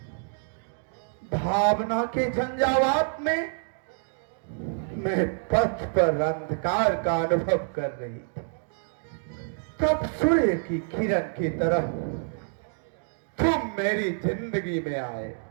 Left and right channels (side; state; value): left; silent; digital silence